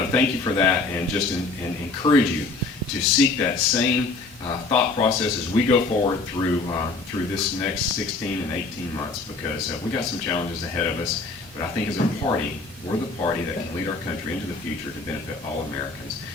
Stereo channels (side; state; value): right; quieter; 3.7 dB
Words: to thank you for that, and just encourage you to seek that same thought process as we go forward through this next 16 and 18 months, because we got some challenges ahead of us. But I think as a party, we're the party that can lead our country into the future to benefit all Americans.